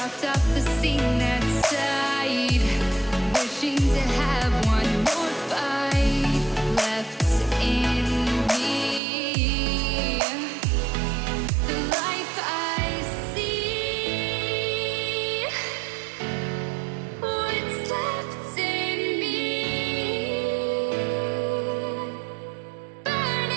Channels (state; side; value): drops out; left; at 9.0 s